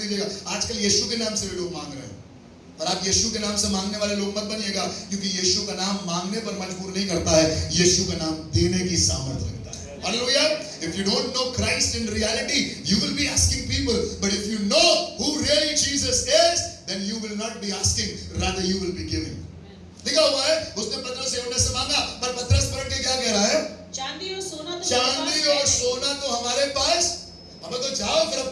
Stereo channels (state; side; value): identical; both; correlation 1.00